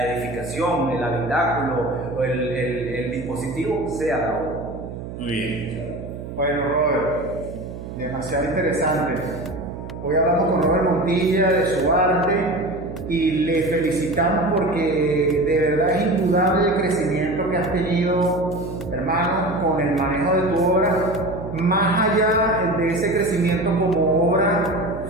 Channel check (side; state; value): right; noise; hum, 10 dB below the sound